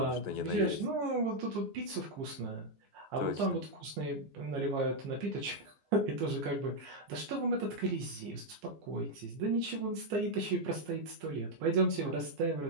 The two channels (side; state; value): left; late; 15 ms